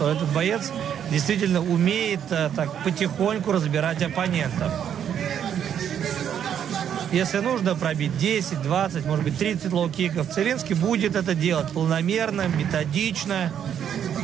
этот боец действительно умеет так потихоньку разбирать оппонентов. Если нужно пробить 10, 20, может быть 30 лоу-киков, Целинский будет это делать планомерно, методично.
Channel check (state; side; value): quieter; left; 9.0 dB